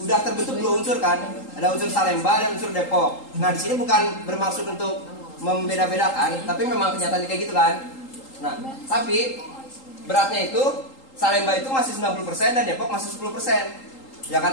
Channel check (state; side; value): late; right; 3.8 ms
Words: udah terbentuk 2 unsur kan. Ada unsur Salemba dan unsur Depok. Nah, di sini bukan bermaksud untuk membeda-bedakan, tapi memang kenyataannya kayak gitu kan. Nah, tapi beratnya itu Salemba itu masih 90% dan Depok masih 10%. Ya